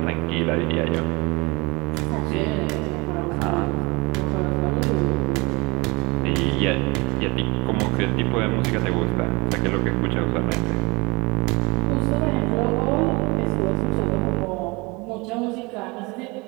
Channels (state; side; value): quieter; left; 25.7 dB